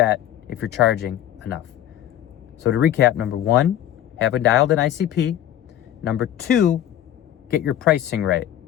if you're charging enough. So to recap, number 1, have a dialed in ICP. Number 2, get your pricing right.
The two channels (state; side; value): quieter; right; 11.6 dB